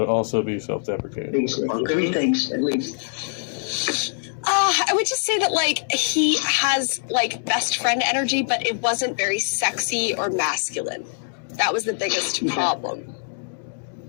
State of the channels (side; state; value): right; silent; digital silence